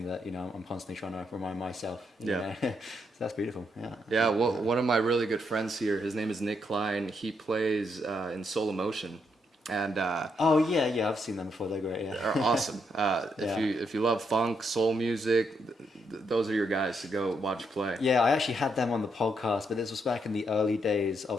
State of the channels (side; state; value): both; normal; correlation 0.78